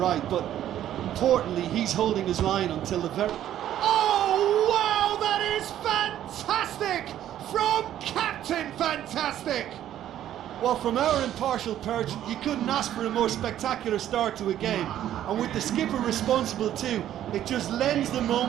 But importantly, he's holding his line until the very... Oh, wow, that is fantastic! From Captain Fantastic! Well, from our impartial perch, you couldn't ask for a more spectacular start to a game. And with the skipper responsible too, it just lends the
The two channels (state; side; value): quieter; left; 11.7 dB